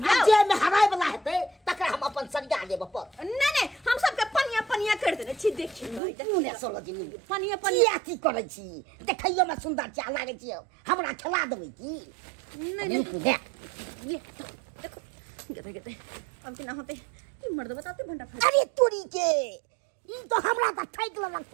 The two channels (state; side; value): drops out; left; at 6.0 s